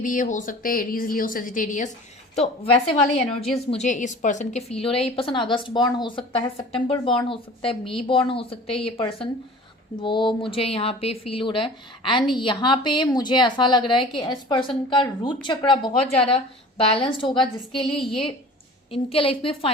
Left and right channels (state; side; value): normal; both; correlation 0.42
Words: ये हो सकते हैं, एरीज, लियो, सेजिटेरियस, तो वैसे वाले एनर्जीज मुझे इस पर्सन के फील हो रहे हैं। ये पर्सन अगस्त बॉर्न हो सकता है, सितंबर बॉर्न हो सकता है, मई बॉर्न हो सकते हैं ये पर्सन, वो मुझे यहाँ पे फील हो रहा है। एंड यहाँ पे मुझे ऐसा लग रहा है कि इस पर्सन का रूट चक्रा बहुत ज़्यादा बैलेंस्ड होगा, जिसके लिए ये इनके लाइफ में